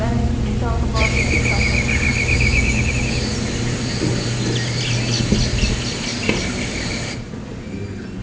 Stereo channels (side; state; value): both; identical; correlation 1.00